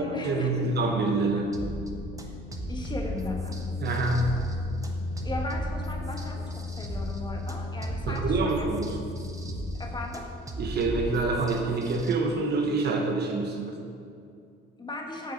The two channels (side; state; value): both; normal; correlation 0.50